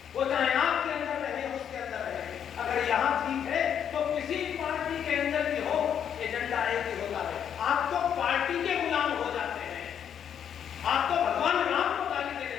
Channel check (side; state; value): right; quieter; 8.7 dB